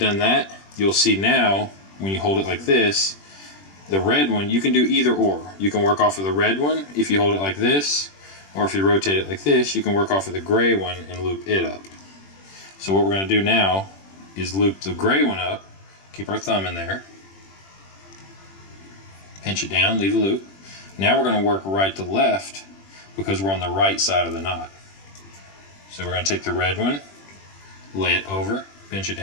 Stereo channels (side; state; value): right; late; 21 ms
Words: that, you'll see now when you hold it like this, the red one, you can do either or. You can work off of the red one if you hold it like this, or if you rotate it like this, you can work off of the gray one and loop it up. So what we're going to do now is loop the gray one up, keep our thumb in there, pinch it down, leave a loop. Now we're going to work right to left because we're on the right side of the knot. So we're going to take the red one, lay it over, pinch it